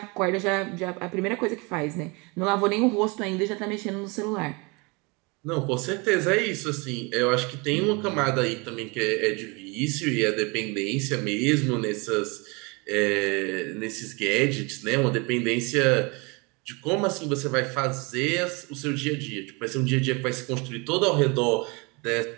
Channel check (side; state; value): left; quieter; 28.4 dB